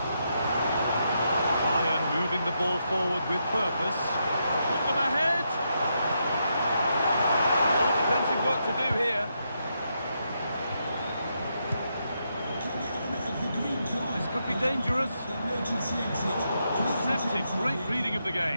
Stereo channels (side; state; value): both; inverted; correlation -0.81